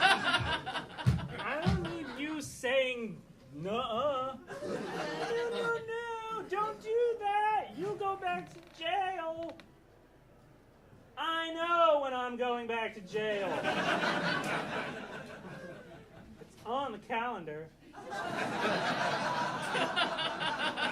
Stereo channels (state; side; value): identical; both; correlation 1.00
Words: don't need you saying, nuh-uh. No, don't do that. You go back to jail. I know when I'm going back to jail. It's on the calendar.